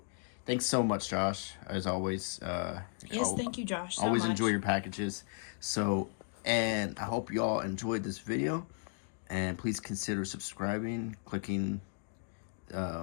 thanks so much, Josh. As always, Yes, thank you, Josh. So always much. enjoy your packages. So, and I hope you all enjoyed this video. And please consider subscribing, clicking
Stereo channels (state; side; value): silent; right; 54 dB below the other